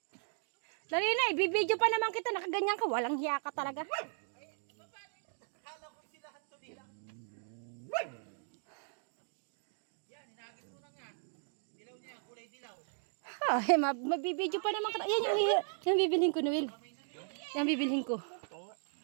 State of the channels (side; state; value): left; silent; digital silence